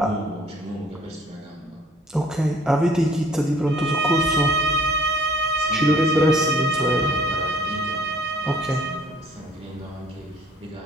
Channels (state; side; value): normal; both; correlation 0.57